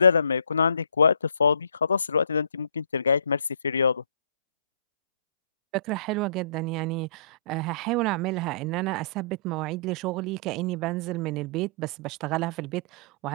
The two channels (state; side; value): inverted; both; correlation -0.54